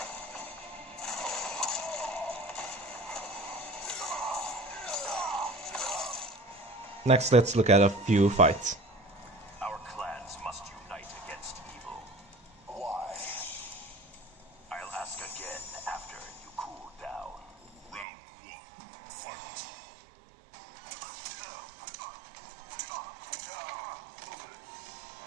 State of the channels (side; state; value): left; drops out; at 18.1 s